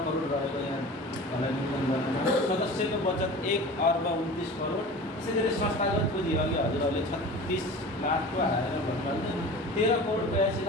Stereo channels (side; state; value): both; normal; correlation 0.37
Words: करोड रहेको यहाँलाई निवेदन गर्नु। सदस्यको बचत 1,29 करोड। त्यसै गरी संस्थागत पुँजी अघि हजुरहरूले 36 लाखको हालेर भन्नुभयो,